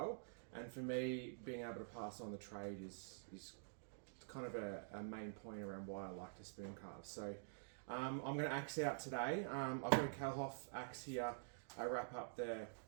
and for me being able to pass on the trade is kind of a main point around why I like to spoon carve. So I'm going to axe out today. I've got a Kalhoff axe here. I wrap up the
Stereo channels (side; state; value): left; silent; digital silence